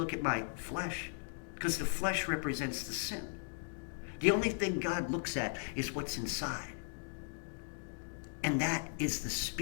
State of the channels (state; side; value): silent; right; digital silence